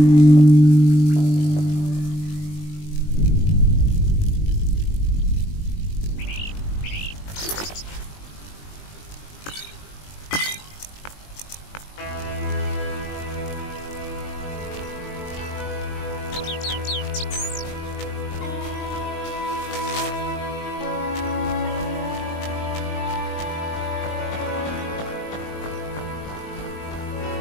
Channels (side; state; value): right; late; 20 ms